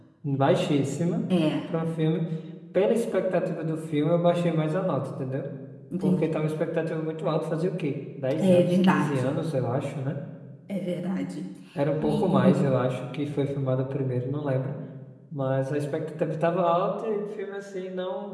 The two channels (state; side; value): identical; both; correlation 1.00